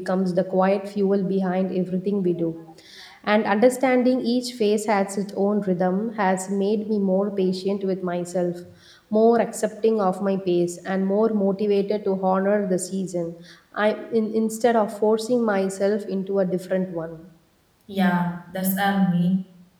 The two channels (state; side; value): identical; both; correlation 1.00